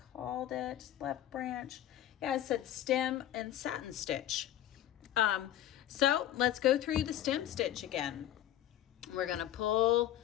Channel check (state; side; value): quieter; right; 12.3 dB